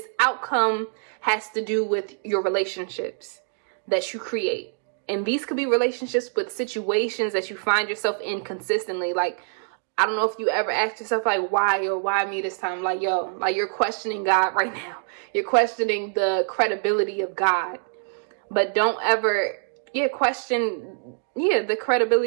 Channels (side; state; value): left; silent; digital silence